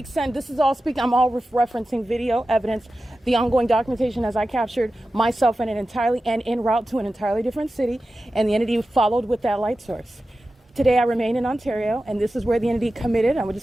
send, this is all speaking, I'm all referencing video evidence, the ongoing documentation as I captured myself in an entirely and en route to an entirely different city, and the entity followed with that light source. Today I remain in Ontario, and this is where the entity committed. I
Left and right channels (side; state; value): both; normal; correlation 0.93